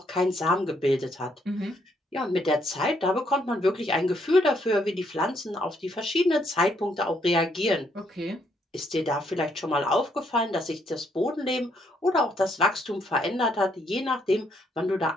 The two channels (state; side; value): normal; both; correlation 0.72